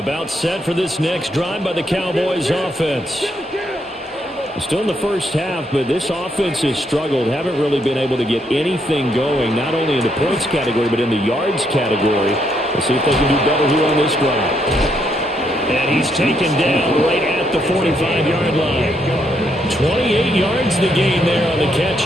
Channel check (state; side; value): normal; both; correlation 0.75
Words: About set for this next drive by the Cowboys offense. Still in the first half, but this offense has struggled. Haven't really been able to get anything going, not only in the points category, but in the yards category. Let's see if they can do better here on this drive. And he's taken down right at the 45-yard line. 28 yards the gain there on the catch